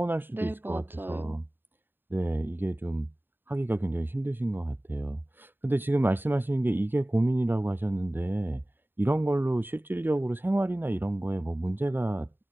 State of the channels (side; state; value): left; late; 0.096 ms